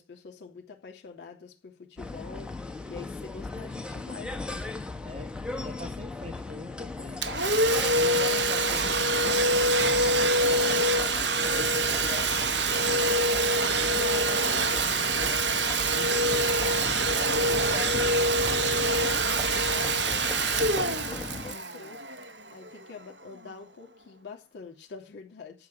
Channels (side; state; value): both; normal; correlation -0.07